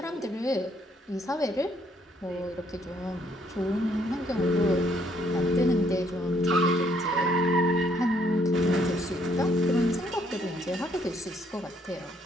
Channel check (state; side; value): normal; both; correlation 0.67